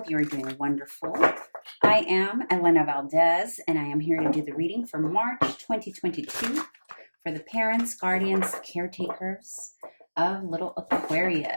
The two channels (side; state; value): both; inverted; correlation -1.00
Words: you are doing wonderful. I am Elena Valdez, and I am here to do the reading for March 2022 for the parents, guardians, caretakers of little